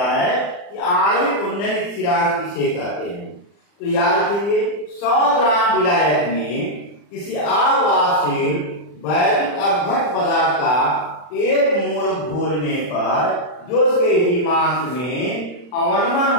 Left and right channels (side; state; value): right; late; 40 ms